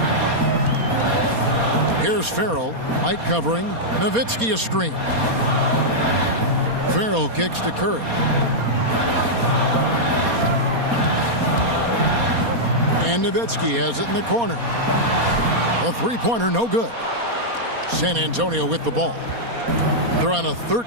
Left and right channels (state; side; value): late; left; 4.2 ms